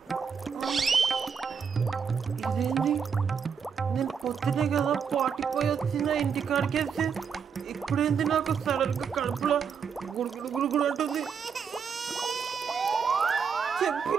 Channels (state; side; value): quieter; left; 6.6 dB